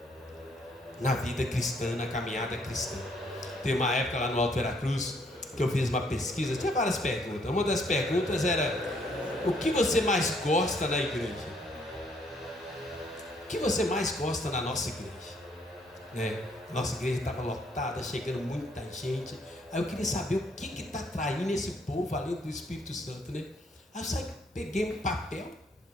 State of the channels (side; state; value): both; normal; correlation 0.67